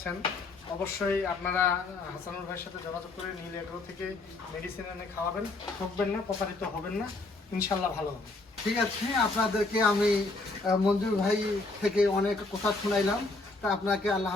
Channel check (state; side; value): quieter; right; 3.3 dB